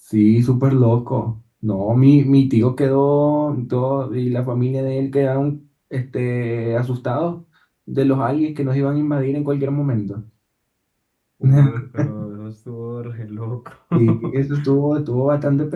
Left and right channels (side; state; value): both; identical; correlation 1.00